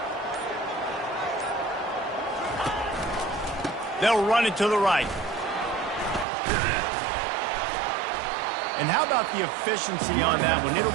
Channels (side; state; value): left; drops out; at 6.2 s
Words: They'll run it to the right. And how about the efficiency on that one? It'll